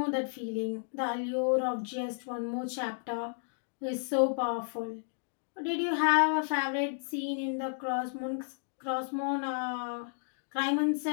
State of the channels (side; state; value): right; silent; digital silence